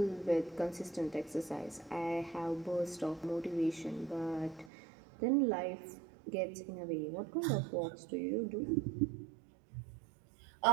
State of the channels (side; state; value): left; drops out; at 4.7 s